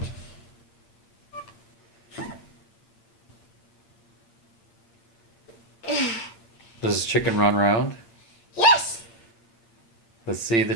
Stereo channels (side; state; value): right; late; 8.8 ms